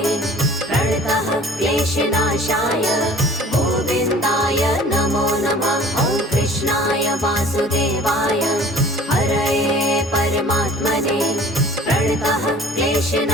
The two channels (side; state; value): both; normal; correlation 0.48